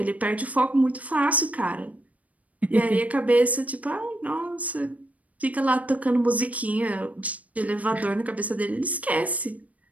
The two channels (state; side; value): late; left; 0.070 ms